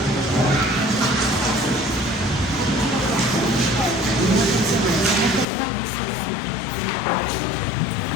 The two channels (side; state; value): right; drops out; at 5.5 s